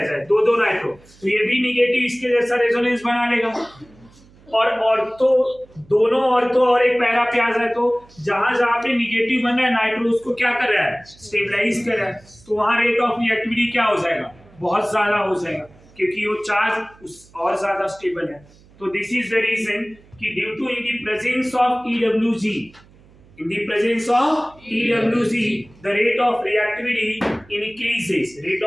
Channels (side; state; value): right; noise; hum, 27 dB below the sound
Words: जाए, दो नाइट्रो, तो ये भी निगेटिव इसके जैसा रेजोनेंस बना लेगा। और ऑर्थो, दोनों ऑर्थो और एक पैरा पे आ जाए तो जहां जहां पे निगेटिव बन रहा है नाइट्रो उसको क्या कर रहा है, स्टेबलाइज कर रहा है, तो वहां रेट ऑफ रिएक्टिविटी क्या हो जाएगा, बहुत ज्यादा हो जाएगा, क्योंकि वो चार्ज उस और ज्यादा स्टेबल है। तो दिस इज द रीजन कि due to in the presence of EWG, in the presence of EWG, the rate of reactivity increases. Rate